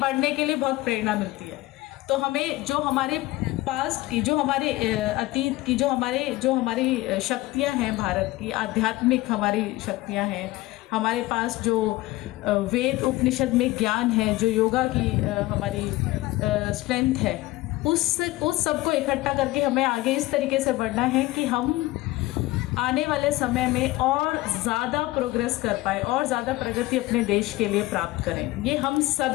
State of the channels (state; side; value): quieter; right; 18.7 dB